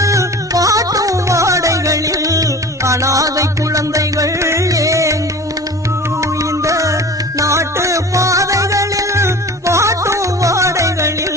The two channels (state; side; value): normal; both; correlation 0.39